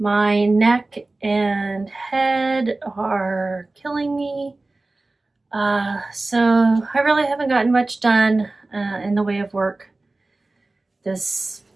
My neck and head are killing me. So I really haven't gotten much done in the way of work since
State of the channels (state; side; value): quieter; left; 3.1 dB